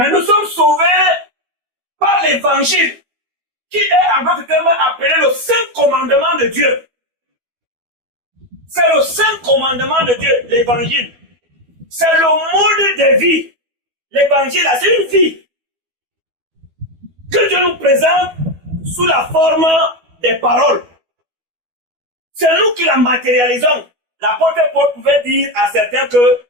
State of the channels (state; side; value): late; left; 12 ms